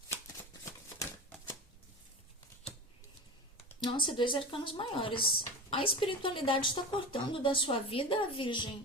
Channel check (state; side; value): normal; both; correlation 0.29